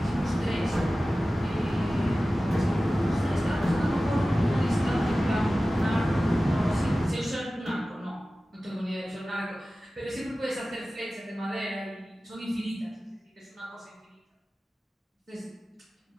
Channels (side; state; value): both; normal; correlation 0.96